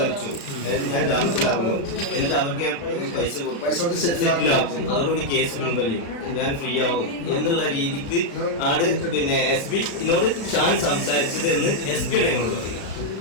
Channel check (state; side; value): late; right; 35 ms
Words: ഞാൻ ജാമ്യത്തിലാകും, എന്നിട്ട് അവർക്ക് പൈസ സെറ്റിലാക്കും, അതോടുകൂടി കേസ് പിൻവലിയും, ഞാൻ ഫ്രീ ആകും എന്നുള്ള രീതിക്ക് ആണ് പിന്നെ SP-നോട് ഷാൻ സംസാരിച്ചത് എന്ന് SP-യുടെ ഞങ്ങളോട് പറയും.